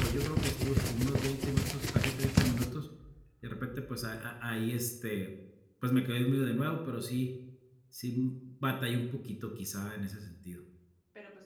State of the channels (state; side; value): identical; both; correlation 1.00